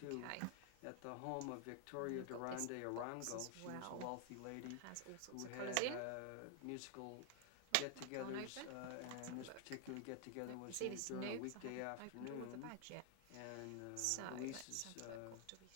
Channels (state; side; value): different; both; correlation 0.00